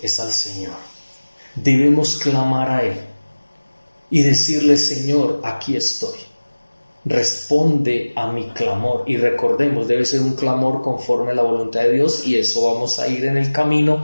es al Señor. Debemos clamar a Él y decirle: Señor, aquí estoy, responde a mi clamor. Y recordemos, debe ser un clamor conforme a la voluntad de Dios, y eso vamos a ir en el camino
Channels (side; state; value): both; inverted; correlation -1.00